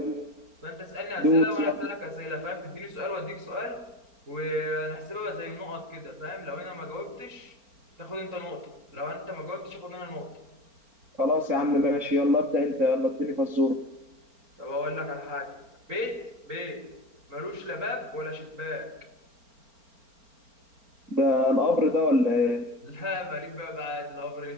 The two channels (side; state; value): left; late; 4.4 ms